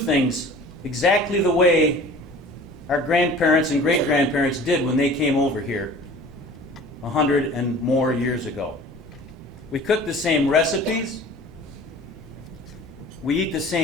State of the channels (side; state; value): both; normal; correlation 0.45